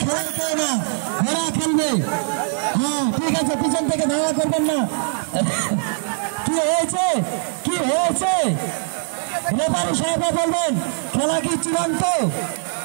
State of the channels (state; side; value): silent; left; 65 dB below the other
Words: খেলার কেউ না, ঘোড়া খেলবে। হ্যাঁ ঠিক আছে, পিছন থেকে ধাওয়া করবেন না। কি হয়েছে কি হয়েছে রেফারি সাহেব বলবেন, খেলা কি চূড়ান্ত?